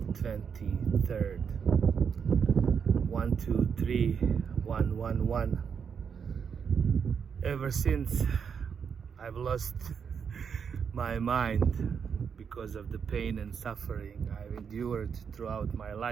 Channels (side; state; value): left; quieter; 6.7 dB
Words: 23rd. 123-111. Ever since I've lost my mind because of the pain and suffering I've endured throughout my